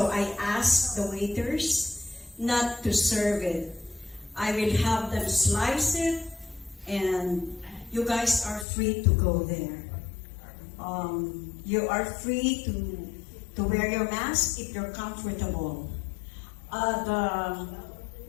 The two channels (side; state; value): right; drops out; at 8.7 s